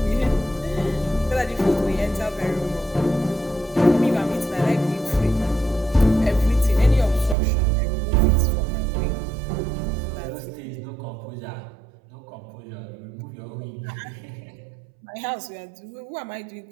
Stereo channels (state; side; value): drops out; left; at 7.4 s